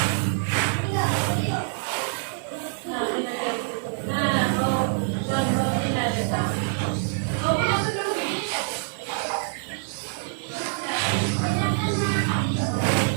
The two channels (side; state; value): left; silent; 60 dB below the other